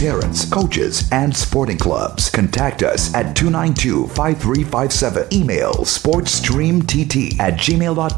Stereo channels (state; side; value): quieter; left; 17.6 dB